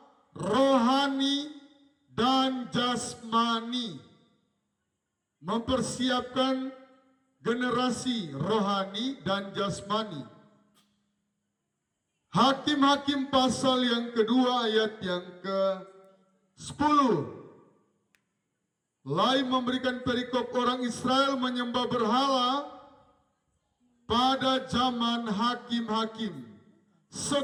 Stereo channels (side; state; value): both; identical; correlation 1.00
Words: rohani dan jasmani. Mempersiapkan generasi rohani dan jasmani. Hakim-Hakim pasal yang kedua ayat yang ke-10. Lain memberikan perikop orang Israel menyembah berhala pada zaman hakim-hakim.